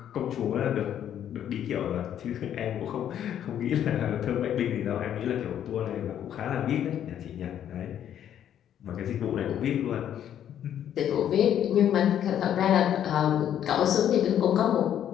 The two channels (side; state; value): right; quieter; 10.1 dB